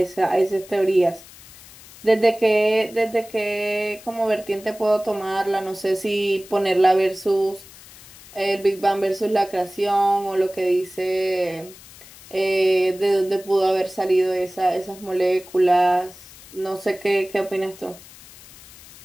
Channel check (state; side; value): noise; left; hiss, 20 dB below the sound